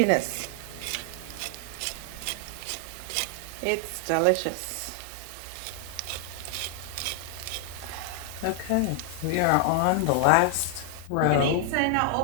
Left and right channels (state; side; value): different; both; correlation 0.00